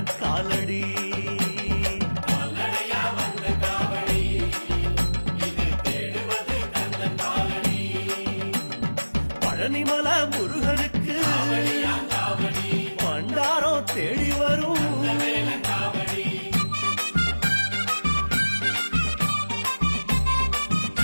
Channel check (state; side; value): inverted; both; correlation -1.00